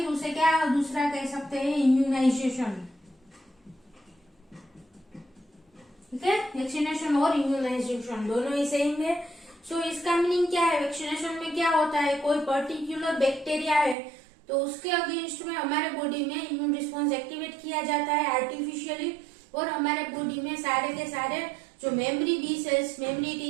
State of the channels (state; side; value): drops out; left; at 14.0 s